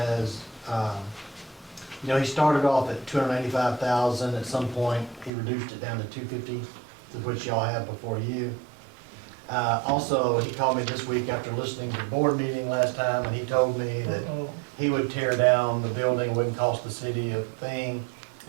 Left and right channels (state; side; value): drops out; left; at 5.3 s